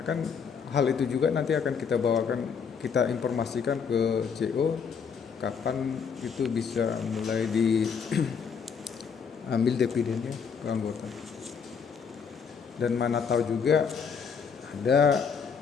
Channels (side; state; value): right; quieter; 6.3 dB